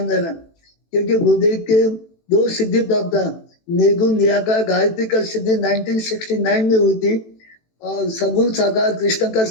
देना, क्योंकि गुरुदेव के 2 सिद्धि प्राप्त है। निर्गुण निराकार गायत्री का सिद्धि 1969 में हुई थी और सगुण साकार कृष्ण का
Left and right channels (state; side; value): late; right; 18 ms